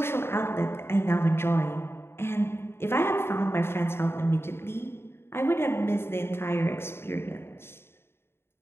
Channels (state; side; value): late; right; 0.12 ms